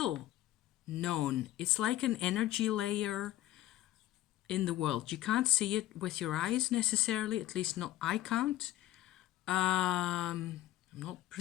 known, it's like an energy layer in the world. You can't see it with your eyes necessarily, at least not I can't. I'm not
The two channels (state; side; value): quieter; right; 14.7 dB